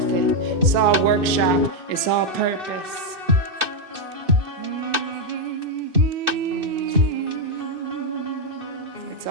it. It's all workshop. It's all purpose. It's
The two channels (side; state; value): left; late; 2.6 ms